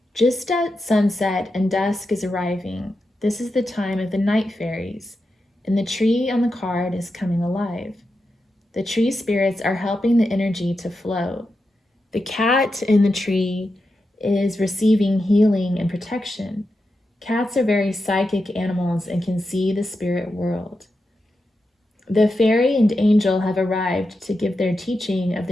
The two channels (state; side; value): normal; both; correlation 0.88